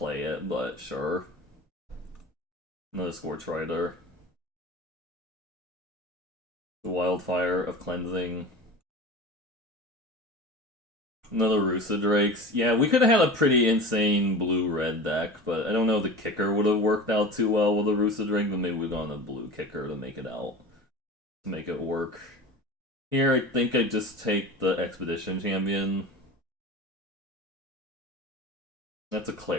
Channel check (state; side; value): normal; both; correlation 0.33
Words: it, but sure. Another Scorch Rider. The Wildfire of Cleansing. Another Rusa Drakes. Yeah, we could have had a pretty insane blue-red deck, but I don't know if the kicker would have worked out too well with the Rusa Drake, but maybe we've gone a blue kicker to make it out. To make it work. Here, I think I just take the Expedition Champion. That's a